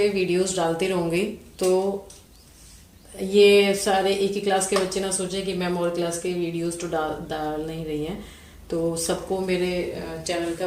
वीडियोस डालती रहूँगी। तो ये सारे एक ही क्लास के बच्चे ना सोचे कि मैम और क्लास के वीडियोस तो डाल नहीं रही हैं, तो सबको मेरे चैनल का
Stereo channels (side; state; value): both; identical; correlation 1.00